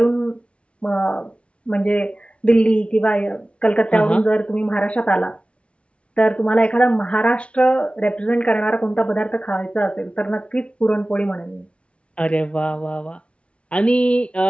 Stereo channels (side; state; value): right; late; 0.060 ms